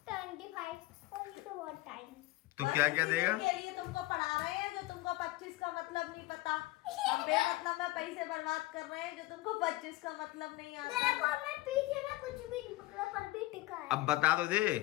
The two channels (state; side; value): quieter; right; 18.2 dB